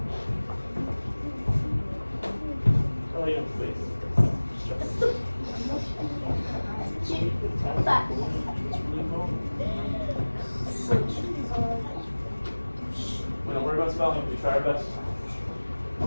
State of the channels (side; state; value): both; inverted; correlation -1.00